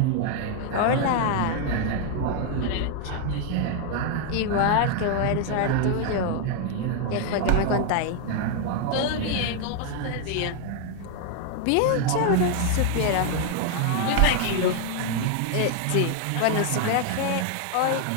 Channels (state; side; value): different; both; correlation 0.00